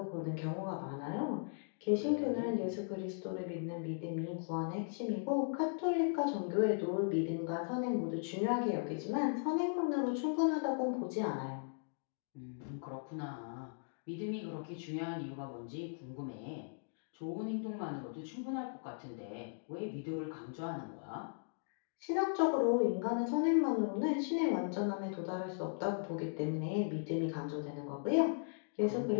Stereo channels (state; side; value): silent; right; digital silence